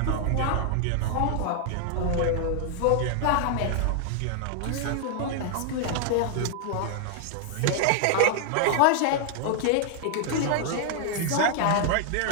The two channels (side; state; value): both; different; correlation 0.00